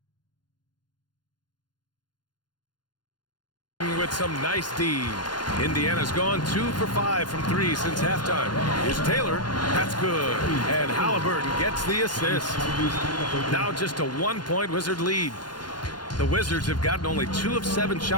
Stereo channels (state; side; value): late; right; 0.71 ms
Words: With some nice D. Indiana's gone 2 for 5 from 3 since halftime. Here's Taylor. That's good. And Halliburton gets the assist. Now just a 1-point Wizard lead. The Wizards have gotten only 2 of 7